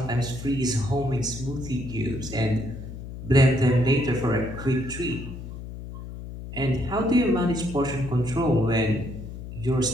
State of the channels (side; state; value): left; noise; hum, 10 dB below the sound